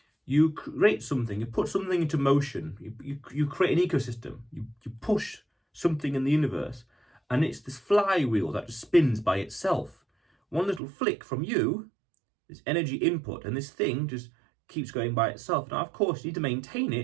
you create something, you put something into motion, you create an ecosystem, you push something in the universe, and it's this flywheel that just spins by itself. One little flick from you, this energy input, and this thing just keeps going by itself. Now, of course, you need to maintain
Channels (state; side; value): drops out; left; at 10.8 s